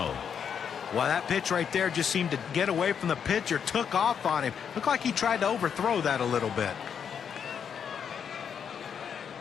that pitch right there just seemed to get away from the pitcher, took off on him. Looked like he tried to overthrow that a little bit.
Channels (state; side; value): quieter; right; 7.5 dB